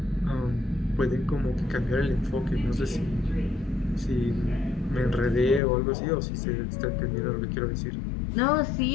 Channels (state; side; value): drops out; right; at 5.6 s